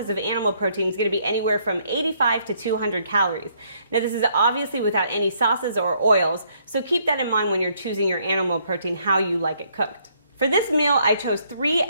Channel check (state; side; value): inverted; both; correlation -0.69